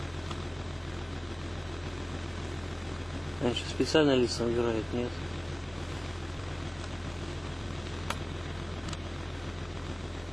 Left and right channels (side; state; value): left; noise; hum, 23 dB below the sound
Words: Раньше специально лица набирают, нет.